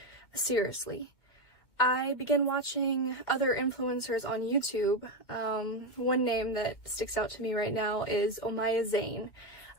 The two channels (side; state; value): right; late; 2.1 ms